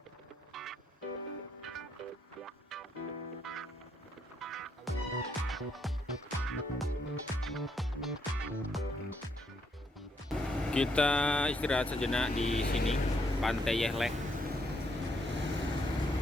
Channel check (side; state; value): both; normal; correlation 0.75